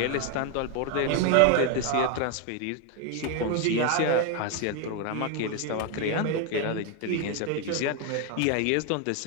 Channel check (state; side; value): different; both; correlation 0.01